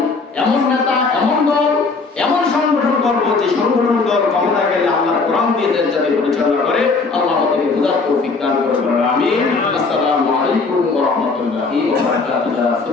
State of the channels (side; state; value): right; quieter; 4.2 dB